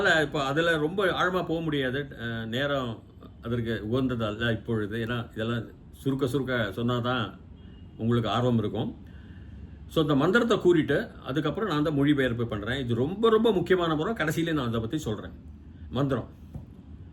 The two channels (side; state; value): both; identical; correlation 1.00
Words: இப்போ அதில் ரொம்ப ஆழமாக போக முடியாது, நேரம் அதற்கு உகந்ததல்ல இப்பொழுது. ஏன்னா இதெல்லாம் சுருக்க சொன்னால் தான் உங்களுக்கு ஆர்வம் இருக்கும். ஸோ இந்த மந்திரத்தை கூறிட்டு அதுக்கப்புறம் நான் தான் மொழிபெயர்ப்பு பண்ணுறேன். இது ரொம்ப ரொம்ப முக்கியமான முறை. கடைசியிலே நான் அதை பற்றி சொல்கிறேன். மந்திரம்